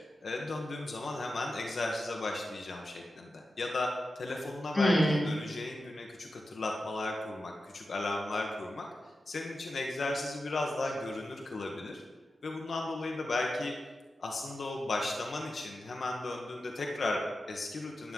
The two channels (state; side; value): normal; both; correlation 0.91